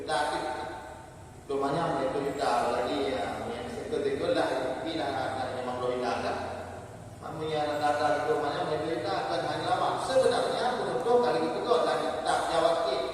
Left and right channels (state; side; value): identical; both; correlation 1.00